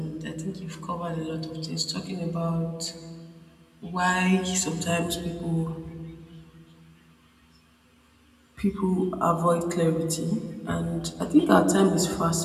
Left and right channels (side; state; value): both; identical; correlation 1.00